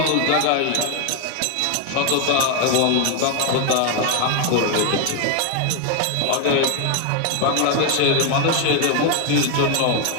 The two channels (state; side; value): different; both; correlation 0.01